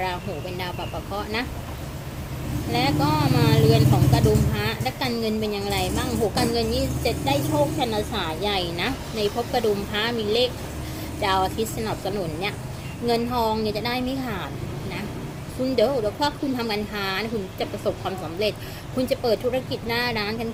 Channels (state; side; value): identical; both; correlation 1.00